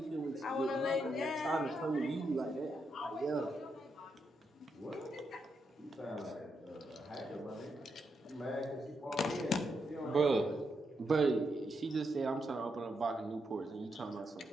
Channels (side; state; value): both; normal; correlation 0.82